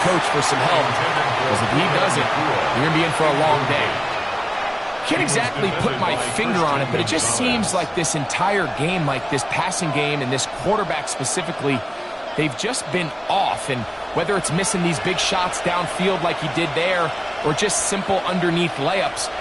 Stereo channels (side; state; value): both; identical; correlation 1.00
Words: coach for some help, because if he doesn't, you're going to be in for a long day. Can't exactly put my finger on it, but it just seems like this entire game, like this passing game and this quarterback specifically, they've just been off. And whether it's missing these big shots downfield like he did there, or just simple underneath layups,